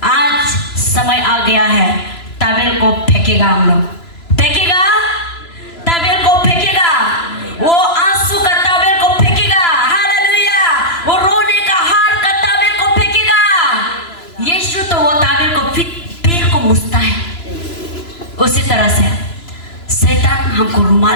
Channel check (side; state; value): right; late; 3.0 ms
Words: आज समय आ गया है, तावेल को फेंकेगा, हम लोग फेंकेगा, तावेल को फेंकेगा, वो आंसू का तावेल को फेंकेगा। हालेलुया। वो रोने का हार का तावेल को फेंकेगा। यीशु तो वो तावेल को पैर को मुछता है। उसी तरह से शैतान हमको